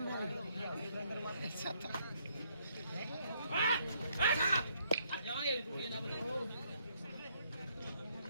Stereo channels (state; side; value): inverted; both; correlation -0.71